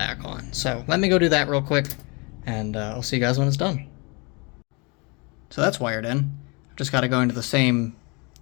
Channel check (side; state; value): right; quieter; 30.2 dB